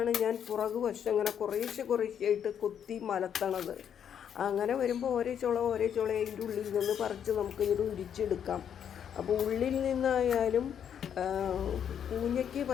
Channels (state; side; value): quieter; right; 8.6 dB